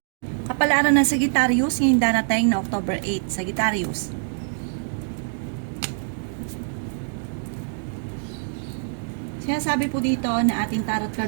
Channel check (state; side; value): silent; left; digital silence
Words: Kapalaran ng Sagittarius ngayong darating na October 8. Sagittarius. Sinasabi po dito na ating tarot